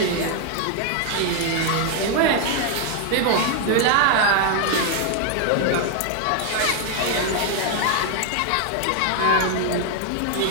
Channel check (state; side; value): different; both; correlation 0.00